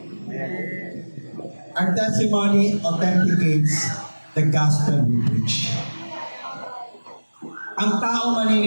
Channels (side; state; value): both; inverted; correlation -1.00